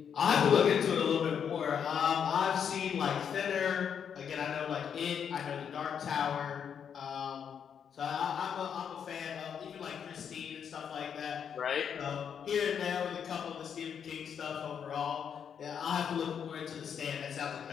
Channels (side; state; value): right; quieter; 7.7 dB